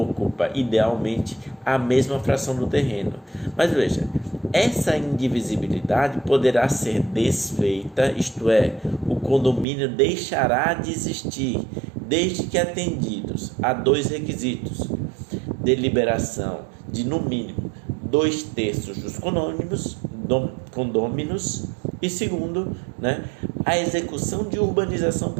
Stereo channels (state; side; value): drops out; left; at 9.7 s